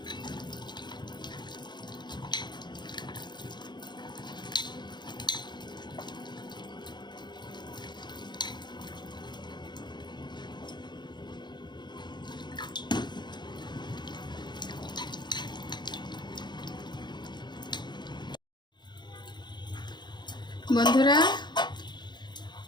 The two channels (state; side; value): late; right; 0.21 ms